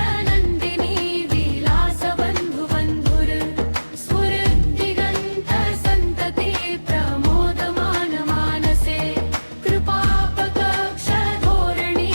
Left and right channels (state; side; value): inverted; both; correlation -1.00